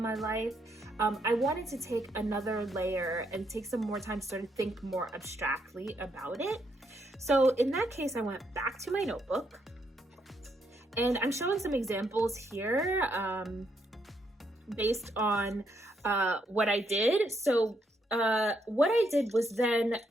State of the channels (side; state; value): both; normal; correlation 0.76